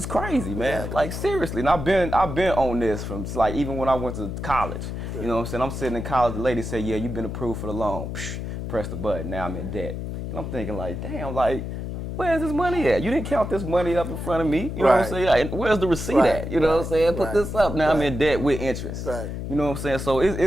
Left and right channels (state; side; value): noise; left; hum, 5 dB below the sound